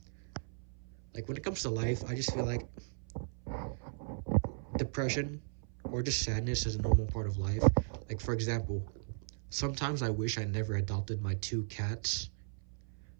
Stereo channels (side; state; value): left; silent; 54 dB below the other